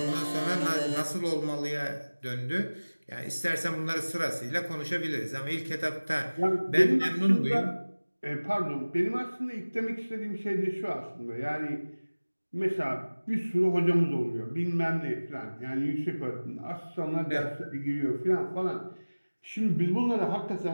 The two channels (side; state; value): both; inverted; correlation -1.00